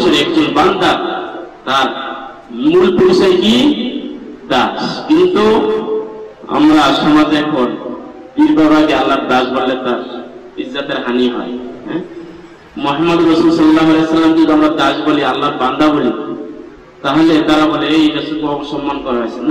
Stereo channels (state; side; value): identical; both; correlation 1.00